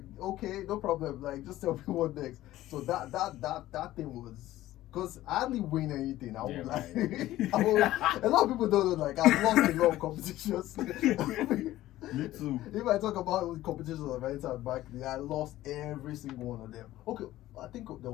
okay, no problem. Like, just tell me what next. So that thing was, because I hardly win anything. I was like, a lot of people don't know. Like, I've lost a lot of competitions. Me too. If I talk about competitions I've entered back then, I lost every single one of them. Okay, I think there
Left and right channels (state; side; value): quieter; right; 15.2 dB